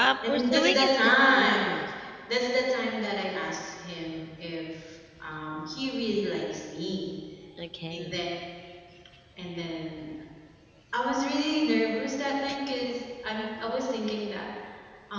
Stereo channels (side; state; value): both; identical; correlation 1.00